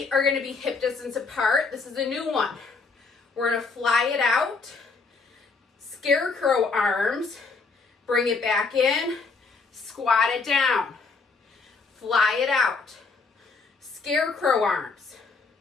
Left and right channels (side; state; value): right; quieter; 4.4 dB